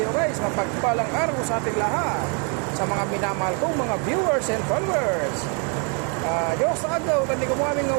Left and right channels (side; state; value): left; quieter; 37.9 dB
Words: guys? Mapagpalang araw sa ating lahat. Sa mga minamahal kong mga viewers and followers. Diyos sa agaw, tandi ko mo aming